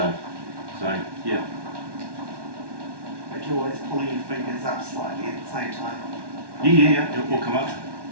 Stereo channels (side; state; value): left; late; 1.1 ms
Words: So, yeah. But you're always pulling your fingers up slightly at the same time. Yeah, it will come up.